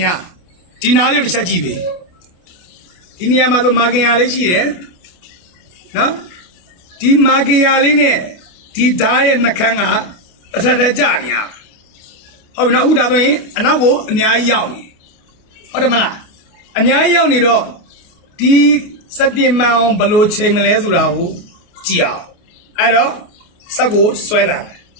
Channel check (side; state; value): right; late; 28 ms